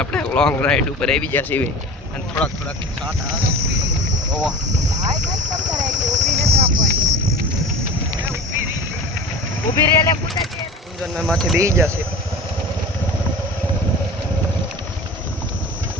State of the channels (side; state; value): both; normal; correlation 0.35